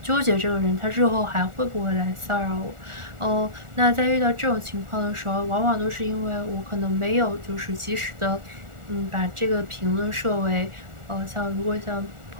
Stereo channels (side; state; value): left; late; 1.4 ms